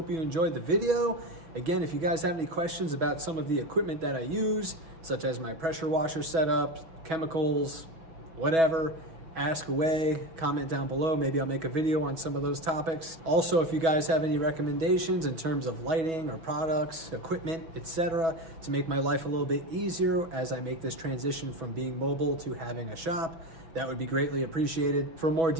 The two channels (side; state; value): left; late; 6.2 ms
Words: you enjoyed the video. Again, if you guys have any questions about some of the equipment that I use, such as my pressure washer setup, chemicals, whatever, ask away, comment down below. Maybe I'll make a video on some of those topics. Also, if you guys have any recommendations in terms of lighting or products, equipment, etc., to make my life a little bit easier as I make this transition from being mobile to having a shop, that would be greatly appreciated. For more